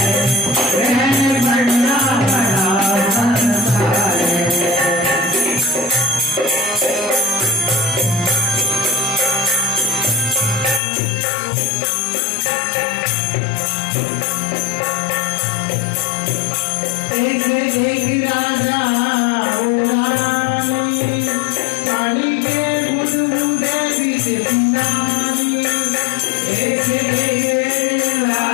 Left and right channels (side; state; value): right; drops out; at 10.8 s